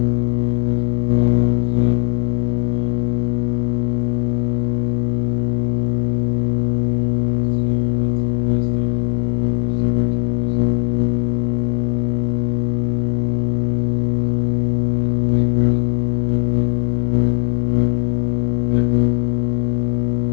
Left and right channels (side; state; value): right; silent; digital silence